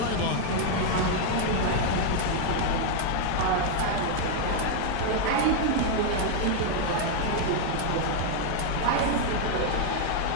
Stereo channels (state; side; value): different; both; correlation 0.00